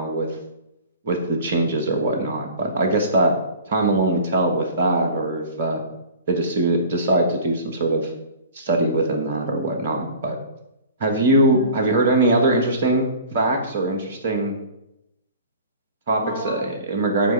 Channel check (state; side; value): inverted; both; correlation -0.42